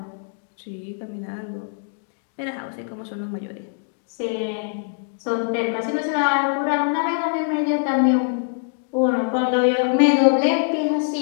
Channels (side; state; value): right; silent; digital silence